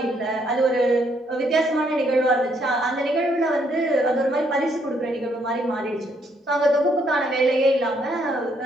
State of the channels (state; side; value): normal; both; correlation 0.71